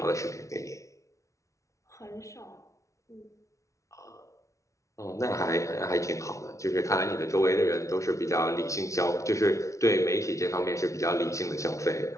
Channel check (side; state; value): right; late; 0.15 ms